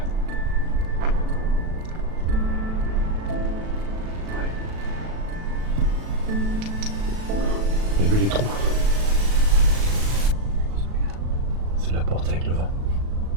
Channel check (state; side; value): late; left; 37 ms